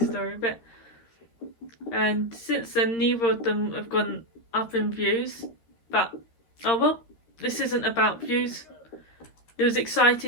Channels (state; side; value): late; right; 13 ms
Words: bit. And since then, neither of them have gone up in views. But, oh well, this isn't about views. It was